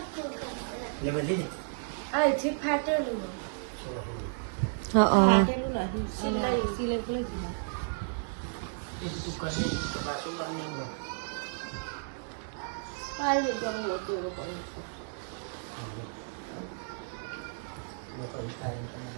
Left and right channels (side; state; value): left; silent; digital silence